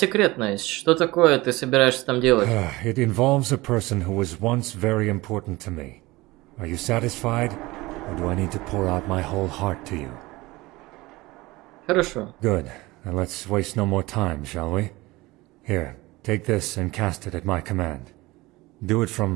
Что такое ты собираешься там делать? It involves a person who was once very important to me. Are you satisfied, or do I need to pour out my whole heart to you? Хорошо. Good. Now let's waste no more time, shall we? Here, take this and cast it at my command. Do it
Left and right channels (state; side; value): quieter; left; 20.7 dB